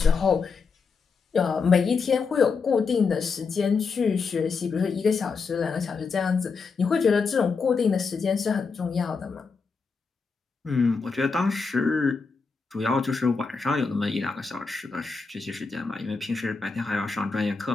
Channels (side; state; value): right; quieter; 4.9 dB